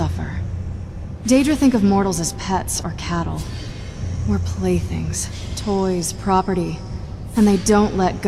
Daedra think of mortals as pets or cattle. We're playthings, toys, property, and they don't let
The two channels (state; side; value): identical; both; correlation 1.00